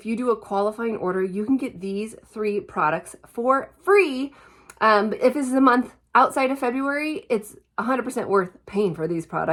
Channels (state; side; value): identical; both; correlation 1.00